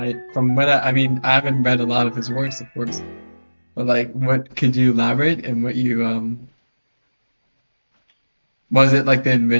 mean, I haven't read a lot of his works, of course, but like, what could you elaborate and what you was it like the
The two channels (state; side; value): inverted; both; correlation -1.00